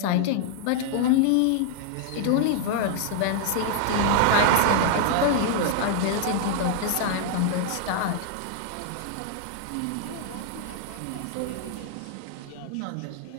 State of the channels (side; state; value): both; different; correlation 0.00